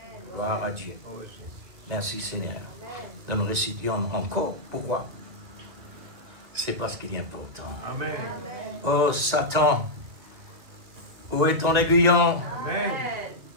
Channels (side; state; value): left; late; 2.0 ms